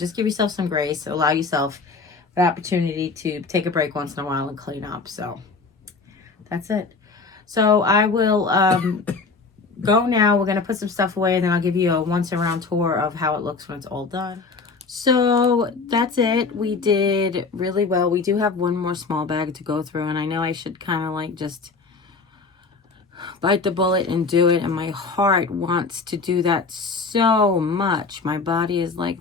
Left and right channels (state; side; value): quieter; right; 4.3 dB